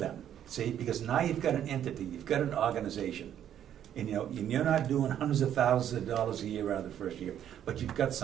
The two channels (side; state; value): left; quieter; 10.2 dB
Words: see? Because now you've got an entity, you've got an organization. And you're not doing hundreds of thousands of dollars a year out of the first year, but you've got